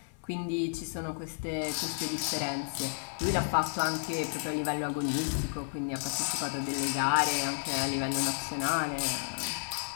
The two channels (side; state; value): right; silent; 56 dB below the other